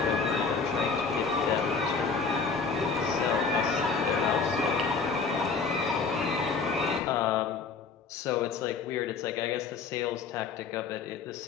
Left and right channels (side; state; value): right; quieter; 5.0 dB